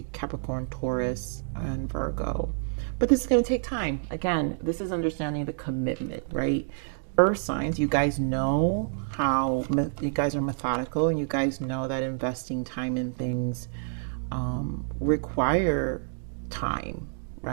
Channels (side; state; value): left; silent; digital silence